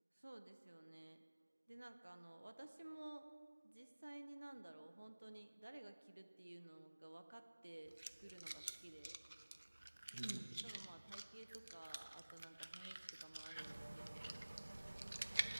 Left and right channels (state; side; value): inverted; both; correlation -1.00